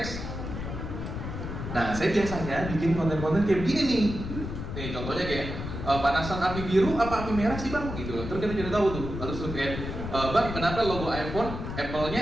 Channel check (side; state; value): left; noise; rumble, 6 dB below the sound